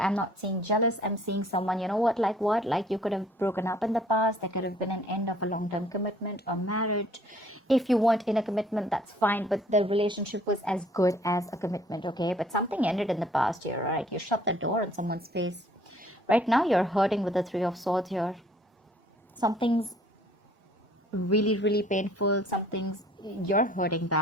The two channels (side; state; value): both; normal; correlation 0.58